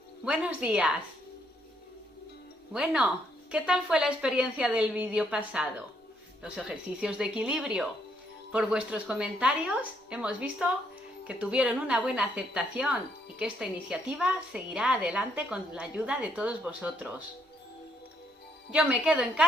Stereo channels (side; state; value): both; normal; correlation 0.72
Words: Buenos días. Bueno, ¿qué tal fue la experiencia del vídeo pasado? Los ejercicios de equilibrio. Por vuestros comentarios hemos visto que tuvieron una buena aceptación y que esta iniciativa seguirá adelante con la ayuda de todos vosotros. Yo me quedo en